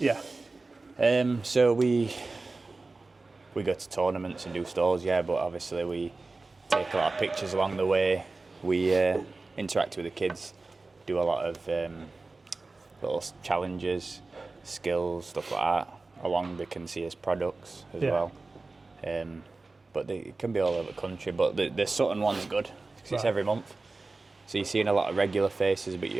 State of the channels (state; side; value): quieter; left; 3.5 dB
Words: So we go to tournaments and do stalls, yeah, but obviously we take a lot of pictures along the way. We interact with the kids, do a lot of little challenges, skills, stuff like that. Along they can see as products as well. But it can be all over the country. But the Sutton one's good because it's every month. So you're seeing a lot of regular faces, but